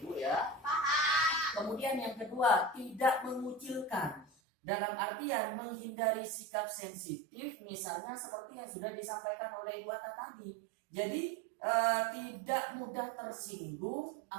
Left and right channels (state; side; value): drops out; left; at 4.2 s